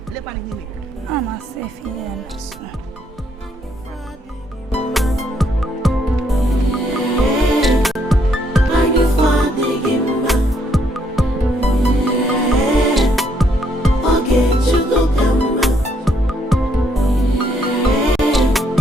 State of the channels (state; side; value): normal; both; correlation 0.71